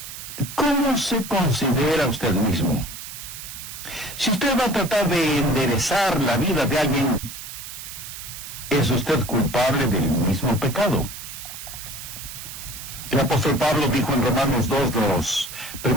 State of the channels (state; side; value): noise; right; hiss, 11 dB below the sound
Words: ¿cómo se considera usted mismo? Si usted va a tratar de enderezar la vida de alguien, ¿es usted culpable del mismo pecado? El apóstol Pablo dijo en Romanos 2, los